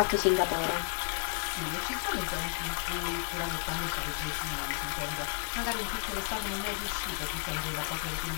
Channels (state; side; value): silent; right; 55 dB below the other